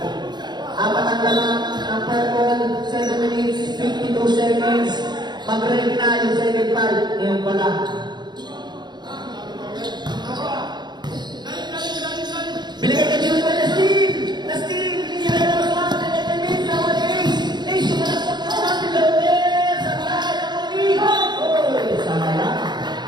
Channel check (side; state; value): left; late; 0.21 ms